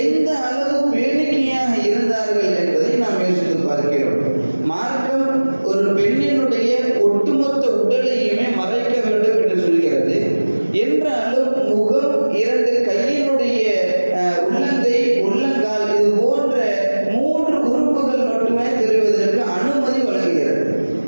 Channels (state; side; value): inverted; both; correlation -1.00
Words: அளவு பேணிக்கையாக இருந்தார்கள் என்பதை நாம் யோசித்து பார்க்கிறோம். மார்க்கம் ஒரு பெண்ணினுடைய ஒட்டுமொத்த உடலையுமே மறைக்க வேண்டும் என்று சொல்கிறது. என்றாலும் முகம், 2 கையினுடைய உள்ளங்கை, உள்ளங்கால் இது போன்ற 3 உறுப்புகள் மட்டுமே தெரிவதற்கு அனுமதி வழங்குகிறது.